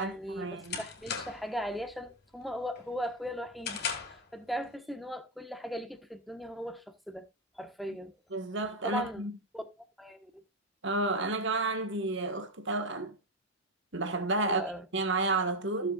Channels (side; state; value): both; normal; correlation 0.07